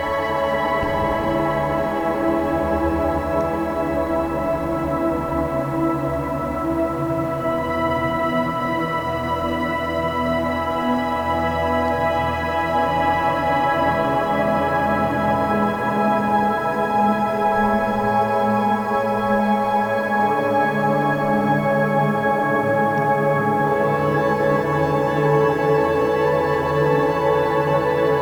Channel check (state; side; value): identical; both; correlation 1.00